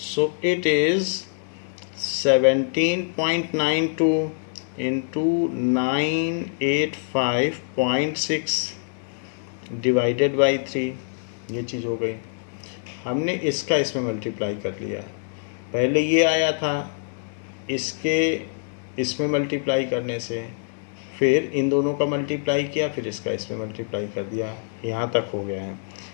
it is 17.92 into 985.6 divided by 3, ये चीज़ हो गई। हमने इसका इसमें मल्टीप्लाई कर लिया, पहले ये आया था, इसके इसमें मल्टीप्लाई करने से फिर इन दोनों का मल्टीप्लाई किया, फिर इसका इसमें मल्टीप्लाई कर दिया, यहाँ तक हो गया है।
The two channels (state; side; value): silent; right; digital silence